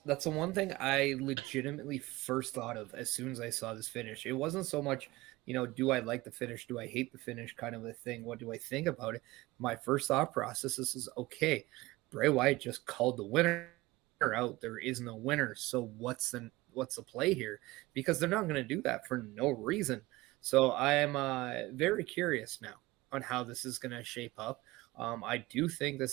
the one thing I legitimately first thought of as soon as I saw this finish. It wasn't so much, do I like the finish? Do I hate the finish? Kind of a thing. What do I think about it? My first thought process is okay. Bray Wyatt just called the winner out. There is no winner. So what's the play here? Because they're not going to do that for no reason. So I am very curious now on how this is going to shape up. I do think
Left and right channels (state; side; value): quieter; left; 20.2 dB